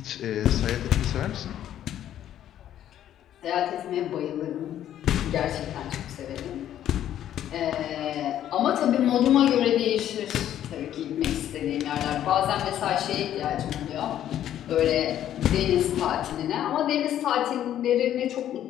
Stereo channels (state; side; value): quieter; right; 11.3 dB